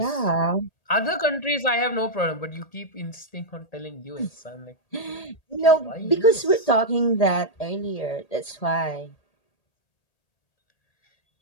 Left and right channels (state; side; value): late; right; 1.8 ms